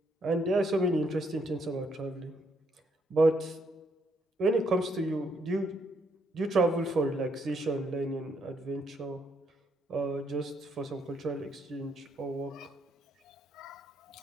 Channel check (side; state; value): both; normal; correlation 0.73